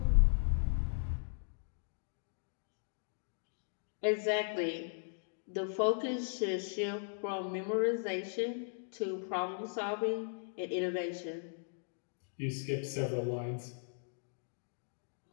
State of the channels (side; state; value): right; silent; digital silence